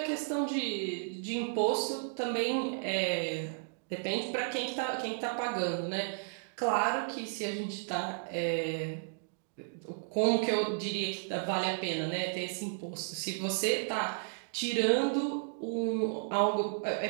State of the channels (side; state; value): left; silent; digital silence